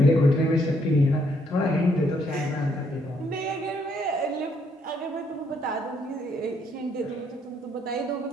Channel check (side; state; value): both; normal; correlation 0.71